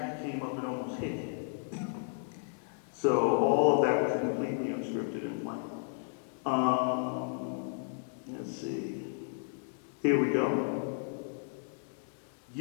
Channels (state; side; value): silent; right; digital silence